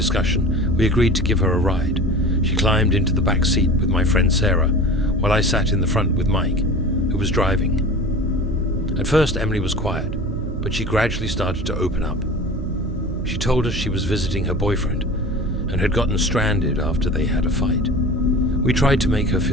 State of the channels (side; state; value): right; noise; hum, 7 dB below the sound